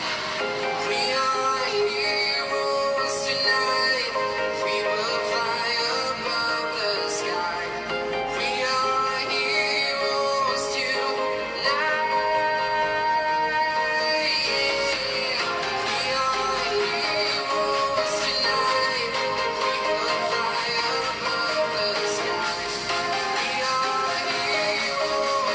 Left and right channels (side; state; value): both; identical; correlation 1.00